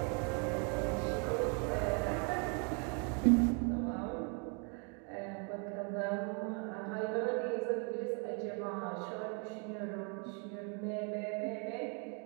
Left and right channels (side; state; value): left; quieter; 36.9 dB